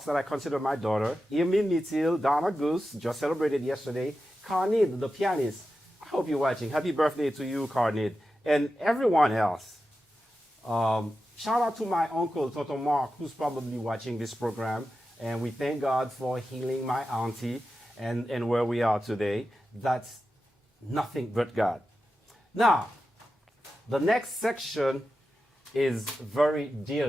that I consider my daughter, Emile Mitil, Donna Goose, just celebrated yesterday, Carnid, the pianist. I hope you're watching. Happy birthday to you, Carnid, and everyone else. Shout out to my uncle, Toto Mark, who's probably watching this program. And we thank God for healing my auntie and where we are today. That's nothing but God. Now, the next section is very dear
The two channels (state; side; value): normal; both; correlation 0.91